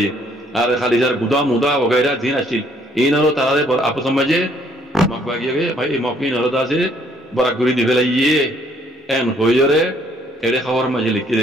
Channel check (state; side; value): normal; both; correlation 0.65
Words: আর খালি যার গুদা মুদা বগেরা দিন আসছিল ইনরো তারারে আপস সমাজে মকবাগিয়ে ভাই মকিন হরদাসে বরাগুরি দিবেলাইয়ে এন হইরে এড়ে খাওয়ার মাঝে লিখে